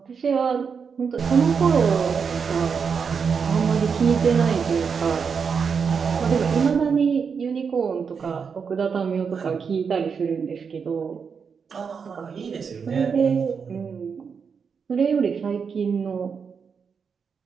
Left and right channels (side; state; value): left; quieter; 6.1 dB